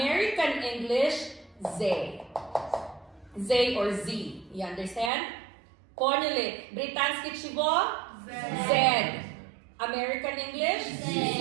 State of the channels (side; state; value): left; drops out; at 5.1 s